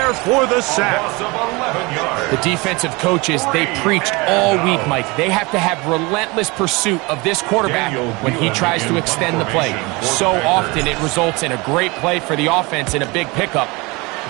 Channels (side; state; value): left; quieter; 25.4 dB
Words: for the sack. The defensive coaches, they preached all week, Mike. They have to have relentless pursuit of this quarterback when he tries to extend the play. So often it results in a great play for the offense and a big pickup.